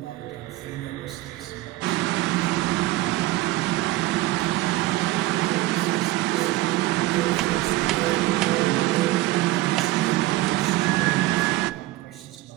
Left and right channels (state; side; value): quieter; left; 17.4 dB